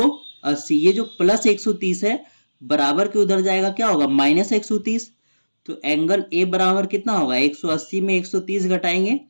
ये जो प्लस 130 है बराबर के उधर जाएगा, क्या होगा माइनस 130। तो एंगल ए बराबर कितना होगा, 180 में 130 घटाएंगे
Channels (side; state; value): both; inverted; correlation -1.00